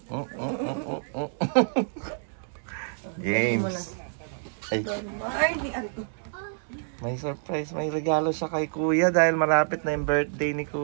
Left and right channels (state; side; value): silent; left; digital silence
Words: James. Ay, Ay, di ato. may surprise. May regalo siya kay Kuya dahil malapit na yung birthday ni